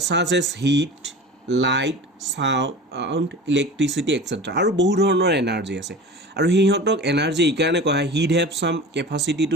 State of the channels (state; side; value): normal; both; correlation 0.36